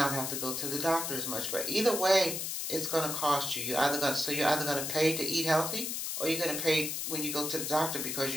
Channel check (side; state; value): left; noise; hiss, 3 dB below the sound